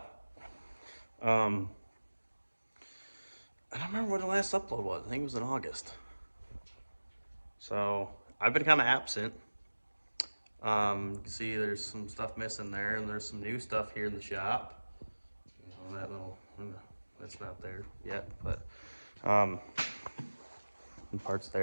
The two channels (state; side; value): inverted; both; correlation -1.00